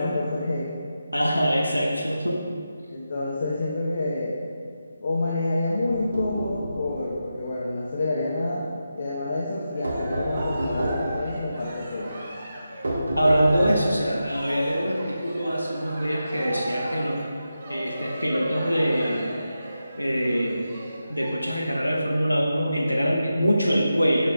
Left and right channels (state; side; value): inverted; both; correlation -0.89